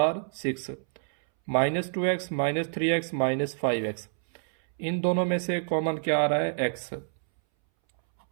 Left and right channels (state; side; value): silent; left; 60 dB below the other